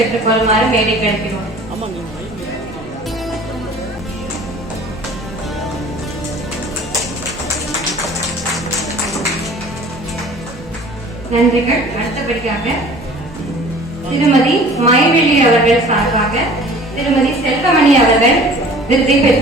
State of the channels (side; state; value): both; normal; correlation 0.47